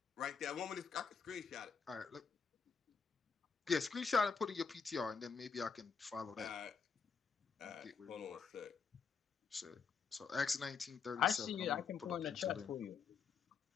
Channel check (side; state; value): right; quieter; 5.7 dB